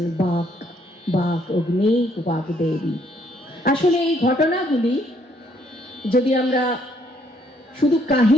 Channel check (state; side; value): normal; both; correlation 0.68